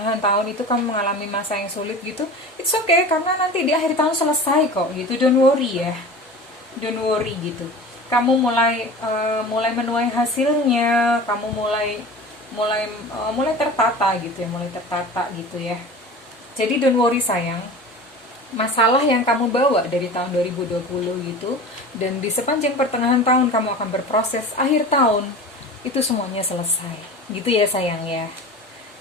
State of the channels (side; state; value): both; normal; correlation 0.35